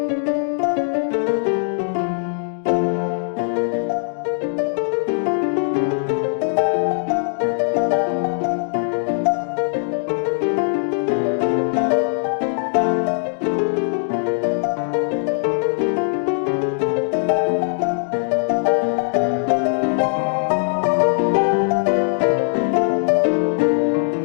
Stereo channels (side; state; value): right; silent; digital silence